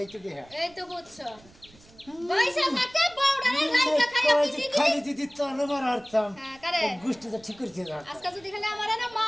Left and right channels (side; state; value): right; noise; rumble, 26 dB below the sound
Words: দে এই তো বুঝছো পয়সা থাকে বউডারে লাইকা খাইয়া পিটি দিবি খালি দিদি তোর মার আরতাম হ্যাঁ করে গুষ্টি তো ঠিক করছে না আজকে যদি খালি আমারে না